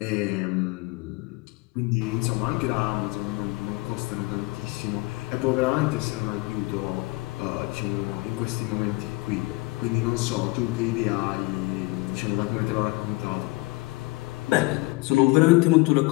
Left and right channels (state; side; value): quieter; right; 23.3 dB